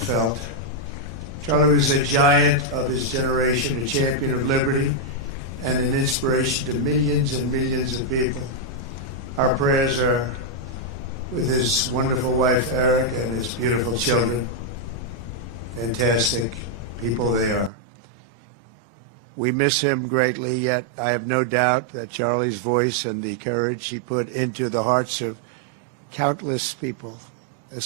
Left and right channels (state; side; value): drops out; left; at 17.7 s